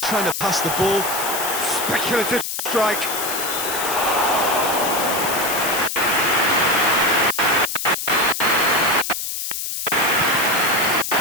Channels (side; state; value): left; noise; hiss, 4 dB below the sound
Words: trying to pass the ball. Speculative strike.